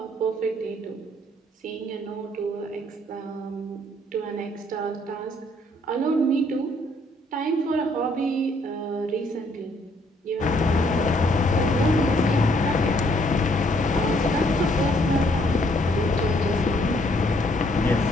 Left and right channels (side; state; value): both; normal; correlation 0.67